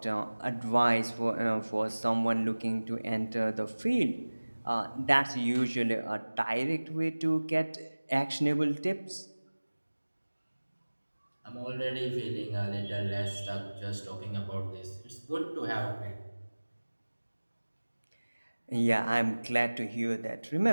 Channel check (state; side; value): inverted; both; correlation -1.00